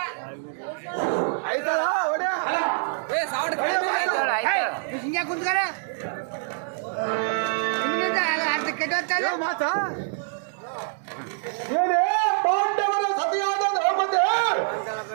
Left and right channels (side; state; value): left; silent; digital silence